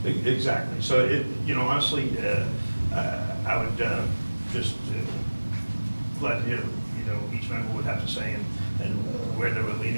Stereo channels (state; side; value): inverted; both; correlation -1.00